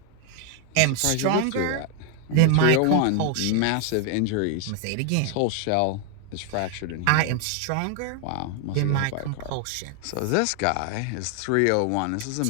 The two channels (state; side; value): different; both; correlation 0.00